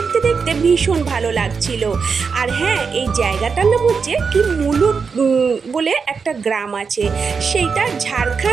দেখতে ভীষণ ভালো লাগছিল। আর হ্যাঁ, এই জায়গাটার নাম হচ্ছে কি মুলুট বলে একটা গ্রাম আছে, সেইটা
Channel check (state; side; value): quieter; left; 5.5 dB